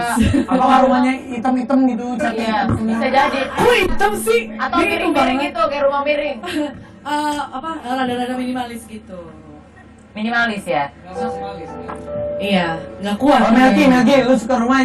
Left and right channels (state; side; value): identical; both; correlation 1.00